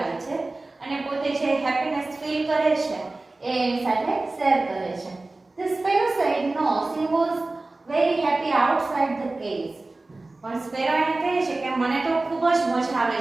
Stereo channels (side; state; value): left; quieter; 3.1 dB